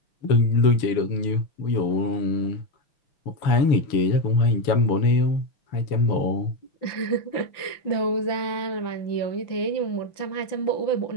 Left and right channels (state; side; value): late; right; 5.9 ms